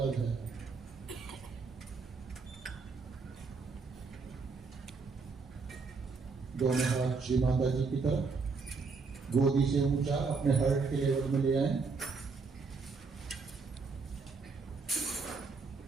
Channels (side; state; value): left; quieter; 4.6 dB